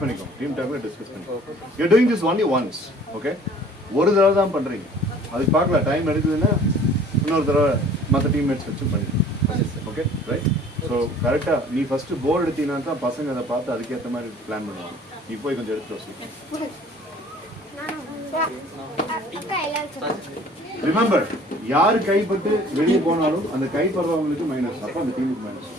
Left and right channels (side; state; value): both; normal; correlation 0.51